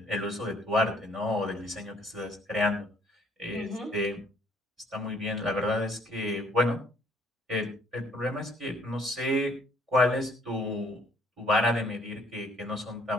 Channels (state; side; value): normal; both; correlation 0.62